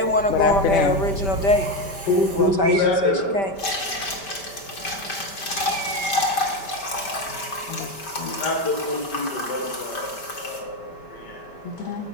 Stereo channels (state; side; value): late; right; 5.1 ms